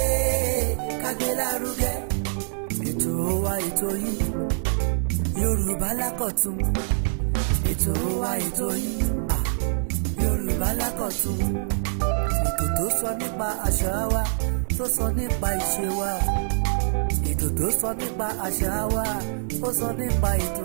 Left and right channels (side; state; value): left; silent; digital silence